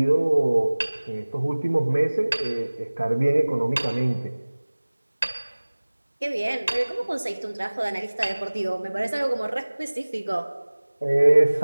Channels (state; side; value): inverted; both; correlation -1.00